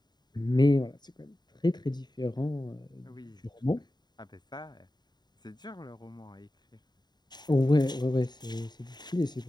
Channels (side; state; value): right; late; 0.20 ms